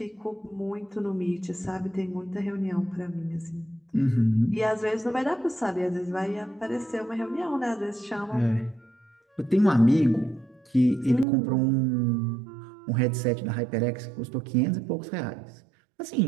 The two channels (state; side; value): drops out; left; at 11.2 s